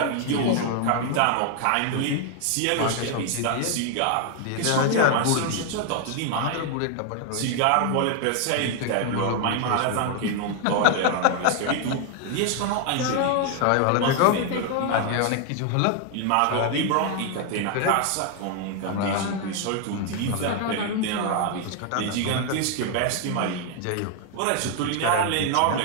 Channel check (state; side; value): different; both; correlation 0.00